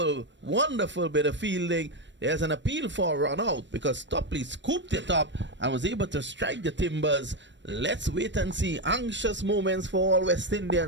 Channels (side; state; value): left; late; 0.53 ms